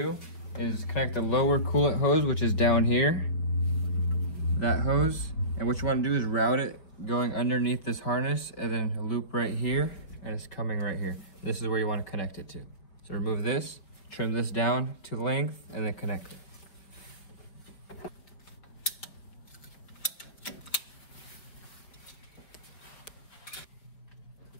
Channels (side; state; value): right; late; 4.7 ms